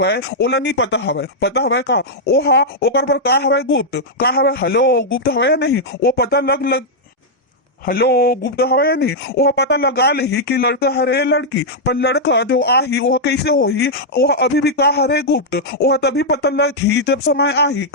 ओला नहीं पता हवा का ओहा ओकर पर का हवा गुप्त का हवा हेलो गुप्त हवा या नहीं वो पता लग हेलो गुप्त हवा या नहीं वह पता लगा ले कि लड़का हरे लड़की पर लड़का जो आही वह कैसे होही वह अभी भी का हरे गुप्त वह तभी पता लगी जब समय आही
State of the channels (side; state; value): both; normal; correlation -0.05